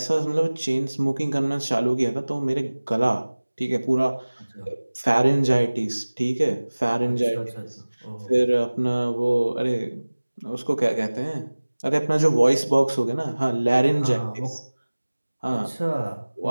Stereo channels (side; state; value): both; inverted; correlation -1.00